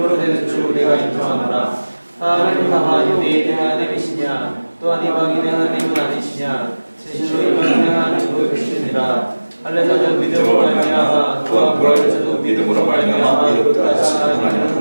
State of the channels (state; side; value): inverted; both; correlation -1.00